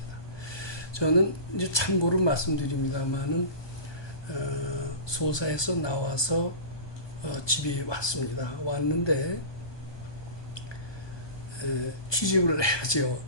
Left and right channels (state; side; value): late; right; 1.2 ms